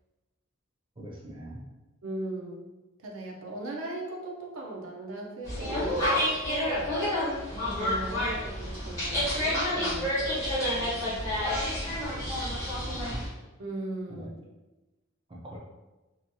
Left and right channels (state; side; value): normal; both; correlation 0.13